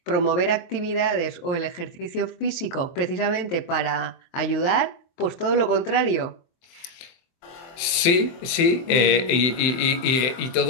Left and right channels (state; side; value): late; right; 23 ms